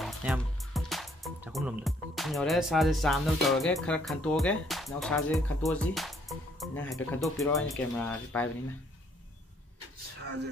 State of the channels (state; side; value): normal; both; correlation 0.66